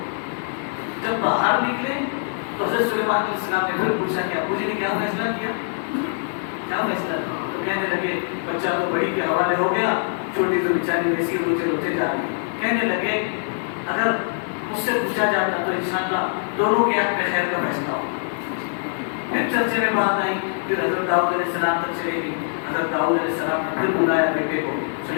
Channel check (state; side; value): silent; right; digital silence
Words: جب باہر نکلے تو حضرت سلیمان علیہ السلام نے پھر پوچھا کہ ابو جی نے کیا فیصلہ کیا، کیا فیصلہ کیا؟ تو کہنے لگے بچہ تو بڑی کے حوالے ہو گیا، چھوٹی تو بیچاری ویسی روتے روتے جا رہی ہے۔ کہنے لگے اگر مجھ سے پوچھا جاتا تو انشاءاللہ دونوں کے حق میں خیر کا فیصلہ ہو۔ پھر چرچے میں بات آئی، پھر حضرت داؤد علیہ السلام تک چلے گی۔ حضرت داؤد علیہ السلام نے پھر بلایا بیٹے کو،